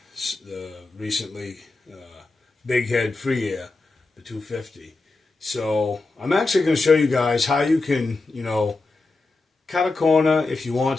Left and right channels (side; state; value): right; quieter; 3.4 dB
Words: recently Big Head Free Air, the 250. So, I'm actually going to show you guys how you can, cut a corner if you want